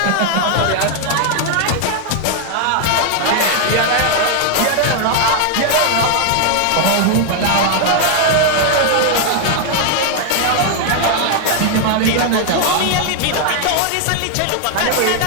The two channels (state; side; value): different; both; correlation 0.00